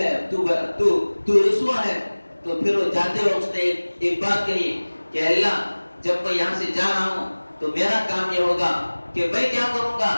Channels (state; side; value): inverted; both; correlation -1.00